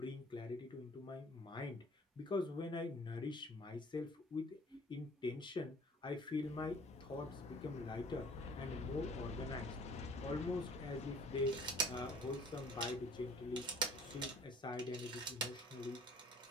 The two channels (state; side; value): normal; both; correlation 0.52